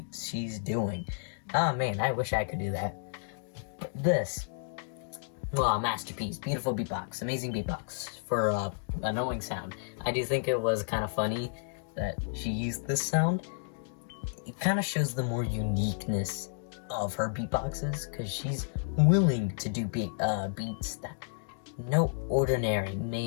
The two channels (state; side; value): silent; right; digital silence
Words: she's doing. Oh man, I wish I could do that. But this, masterpiece, beautiful beatbox, amazing beatbox for annoying sound. I do think it was kind of funny that she used this sound. It kind of shows the more uniqueness of her beatboxes, because she's willing to do beats that no ordinary